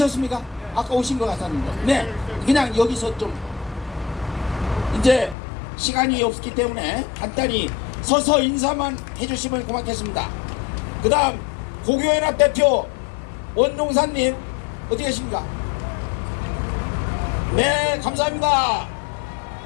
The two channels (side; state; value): right; drops out; at 5.4 s